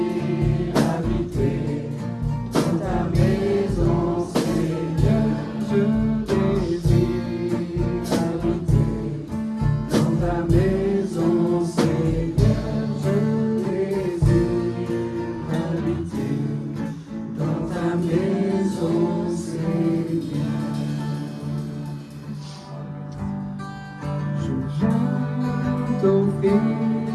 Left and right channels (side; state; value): both; identical; correlation 1.00